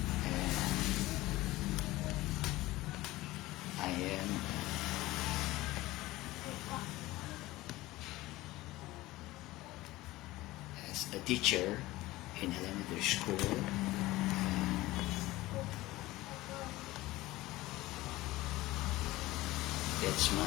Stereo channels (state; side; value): quieter; right; 18.3 dB